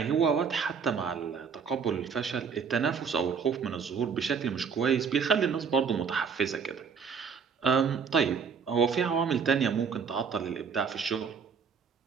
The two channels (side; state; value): left; quieter; 6.2 dB